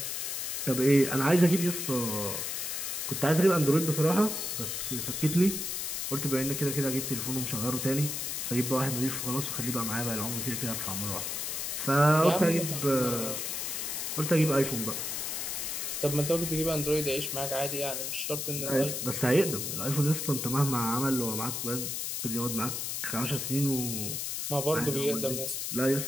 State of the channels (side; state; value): left; noise; hiss, 3 dB below the sound